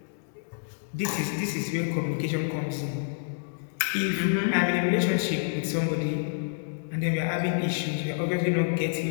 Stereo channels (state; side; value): silent; right; digital silence